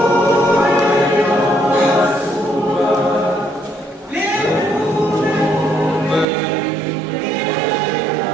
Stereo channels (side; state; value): left; drops out; at 6.2 s